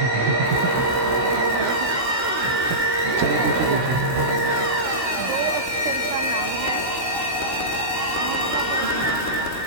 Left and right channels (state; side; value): late; left; 16 ms